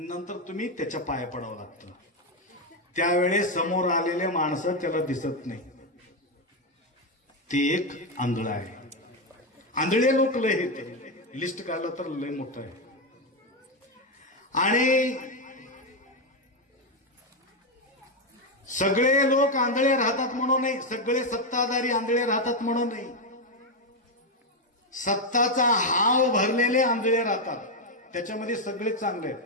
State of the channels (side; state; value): both; normal; correlation 0.06